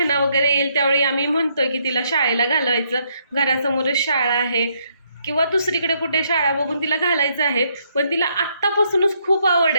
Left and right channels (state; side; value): inverted; both; correlation -0.73